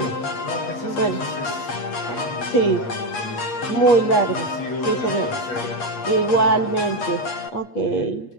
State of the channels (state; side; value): late; right; 8.4 ms